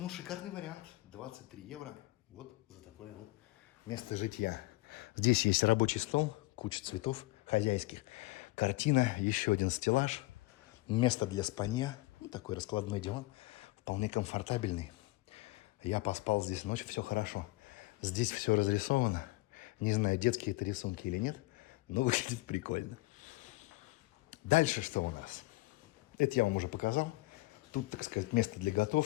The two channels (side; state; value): right; quieter; 20.6 dB